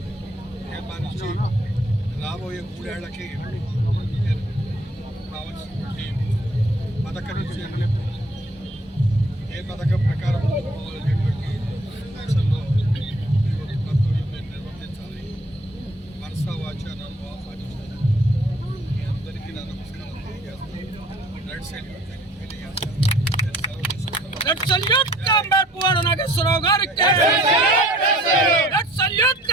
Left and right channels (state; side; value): normal; both; correlation 0.56